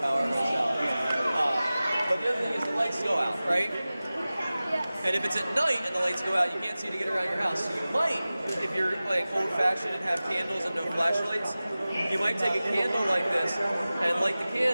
power goes out. But the other thing is the lights go out, right? And if it's at night and the lights go out, you can't see to get around your house. So you might, if you're like old-fashioned and have candles and no flashlights, you might take a candle like this and light the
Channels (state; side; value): inverted; both; correlation -0.97